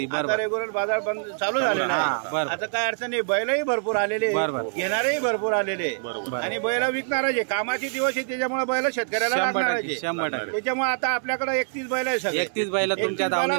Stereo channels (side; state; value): left; silent; digital silence